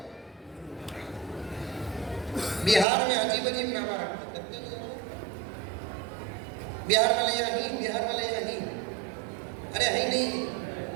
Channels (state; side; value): drops out; left; at 2.9 s